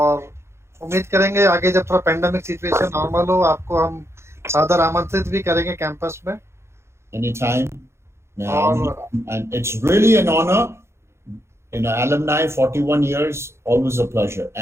उम्मीद करेंगे आगे जब थोड़ा पेंडेमिक सिचुएशन नॉर्मल हो, आपको हम सादर आमंत्रित भी करेंगे कैंपस में. Anytime. And it's really an honor. Alumni, 41 years, always a pleasure.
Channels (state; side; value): late; left; 0.13 ms